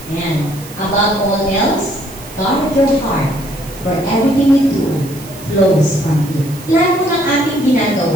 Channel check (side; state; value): right; noise; hiss, 18 dB below the sound